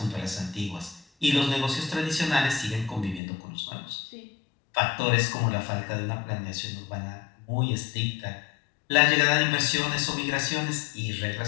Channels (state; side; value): drops out; right; at 3.2 s